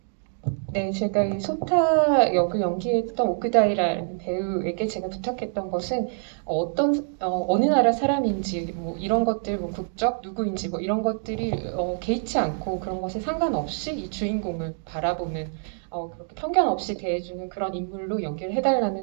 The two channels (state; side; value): silent; left; digital silence